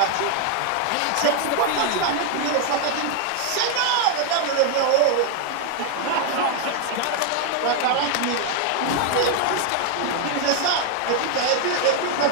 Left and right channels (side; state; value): both; different; correlation 0.00